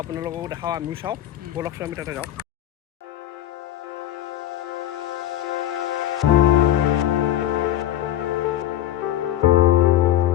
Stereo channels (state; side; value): quieter; right; 12.6 dB